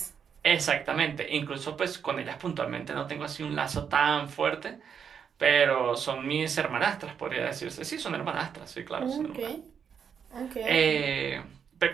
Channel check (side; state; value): left; quieter; 7.2 dB